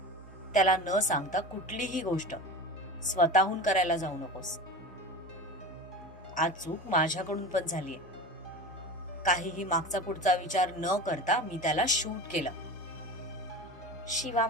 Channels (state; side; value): normal; both; correlation 0.31